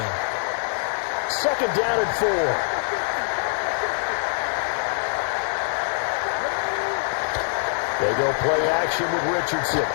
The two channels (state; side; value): silent; right; digital silence